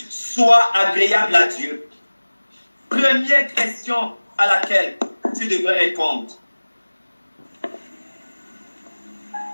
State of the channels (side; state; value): both; inverted; correlation -1.00